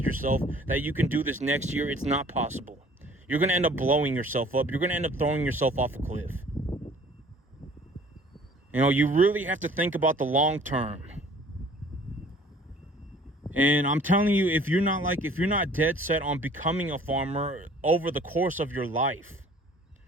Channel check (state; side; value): normal; both; correlation 0.52